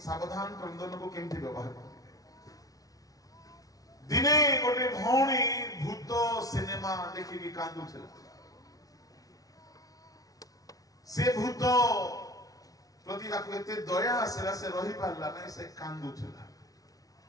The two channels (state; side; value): late; right; 0.18 ms